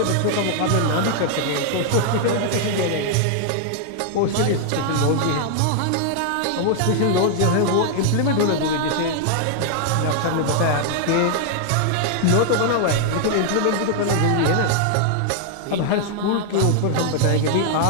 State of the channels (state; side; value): different; both; correlation 0.00